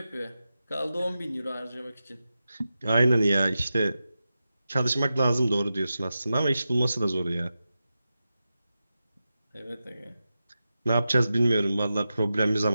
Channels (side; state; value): both; inverted; correlation -0.92